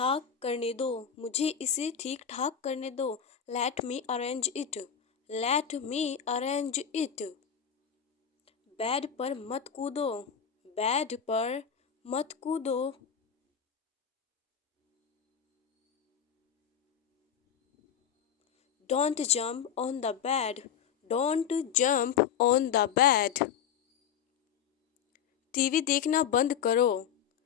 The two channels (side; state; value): right; quieter; 8.0 dB